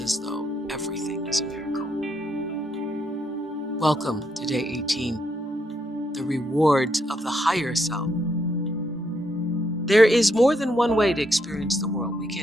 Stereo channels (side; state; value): both; normal; correlation 0.77